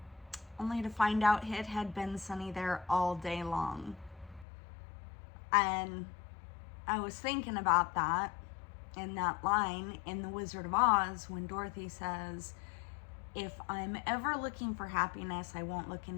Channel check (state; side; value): drops out; right; at 4.5 s